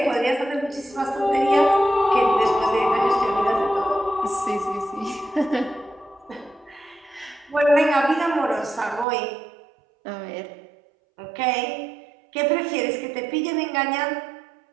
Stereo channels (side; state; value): left; drops out; at 9.1 s